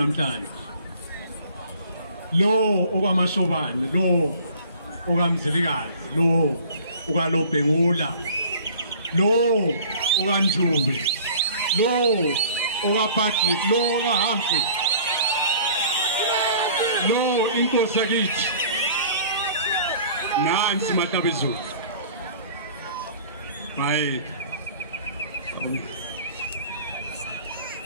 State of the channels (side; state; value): both; inverted; correlation -0.48